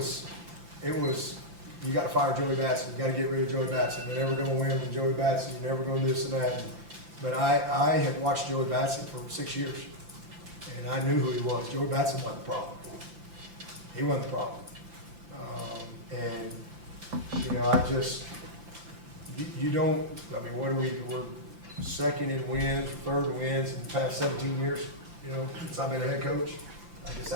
It was. You got to fire Joey Batson. You got to get rid of Joey Batson. You're never going to win with Joey Batson. You're never going to this and that. But I had watched Joey Batson for 6 years, and I knew who he was. Joey Batson wasn't the problem. He wasn't the problem. We're second in wins, third in wins in the past 17 years, since I've been a head coach. I guess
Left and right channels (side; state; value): left; late; 5.8 ms